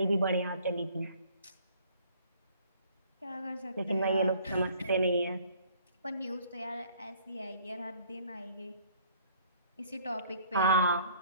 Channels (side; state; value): both; inverted; correlation -0.58